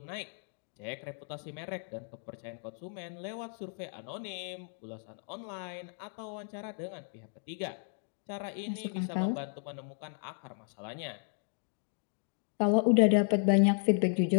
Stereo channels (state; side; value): silent; right; 55 dB below the other